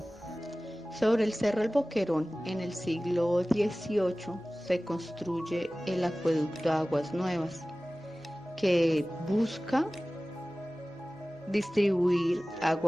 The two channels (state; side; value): noise; right; hum, 27 dB below the sound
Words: Sobre el Cerro El Boquerón, en el siglo XVIII, se construye el acueducto Aguas Nuevas, que busca distribuir